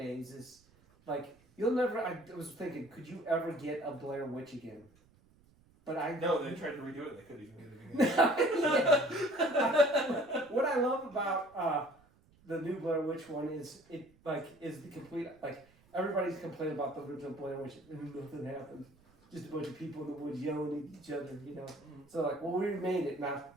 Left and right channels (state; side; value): noise; right; rumble, 30 dB below the sound